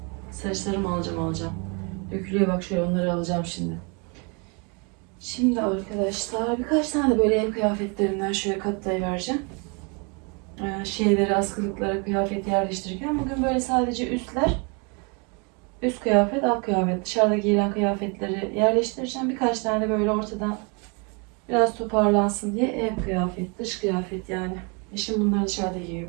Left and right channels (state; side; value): quieter; left; 33.5 dB